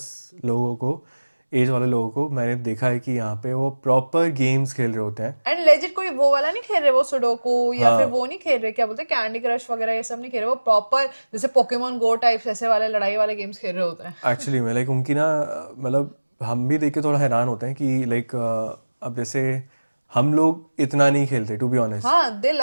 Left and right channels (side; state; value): both; inverted; correlation -1.00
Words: लोगों को, एज वाले लोगों को मैंने देखा है कि यहाँ पे वो प्रॉपर गेम्स खेल रहे होते हैं। एंड लेजिट कोई वो वाला नहीं खेल रहे, वो सुडोकू या फिर हाँ वो नहीं खेल रहे, क्या बोलते हैं, कैंडी क्रश वगैरह ये सब नहीं खेल रहे, वो प्रॉपर जैसे पोकेमोन गो टाइप्स ऐसे वाले लड़ाई वाले गेम्स खेल रहे होते हैं। एक्चुअली में लाइक उनकी ना मतलब हम भी देख के थोड़ा हैरान होते हैं कि लाइक अब जैसे हम लोग इतना नहीं खेलते टू बी ऑनेस्ट। हाँ, दे